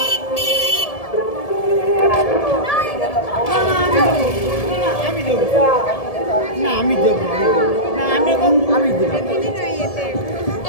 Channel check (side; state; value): right; late; 1.7 ms